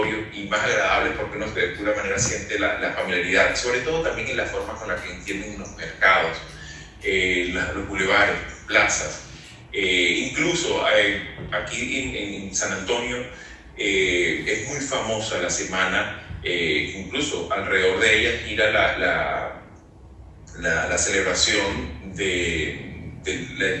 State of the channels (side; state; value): both; identical; correlation 1.00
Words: y más agradables, porque uno de alguna manera siente la familiaridad, sobre todo también en la forma con la que entienden los mercados, los bulevares, plazas. Incluso aquí en San Antonio es muy famosa la semana, incluso alrededor de ella gira la celebración de